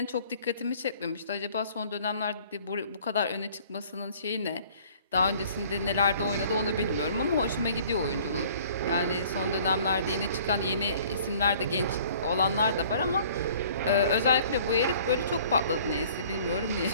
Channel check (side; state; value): both; inverted; correlation -0.53